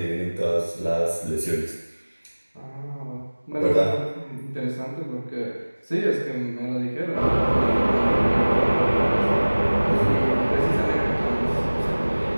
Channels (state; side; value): inverted; both; correlation -1.00